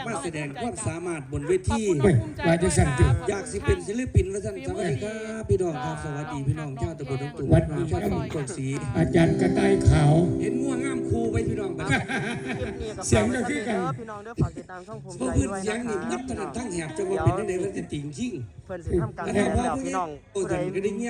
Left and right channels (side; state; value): both; identical; correlation 1.00